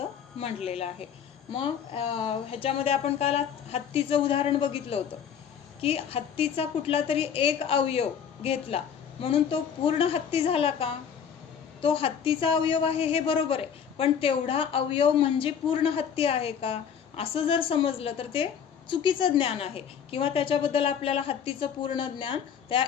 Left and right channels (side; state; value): right; quieter; 7.8 dB